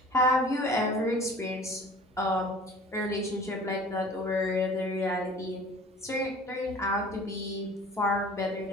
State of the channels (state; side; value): normal; both; correlation 0.46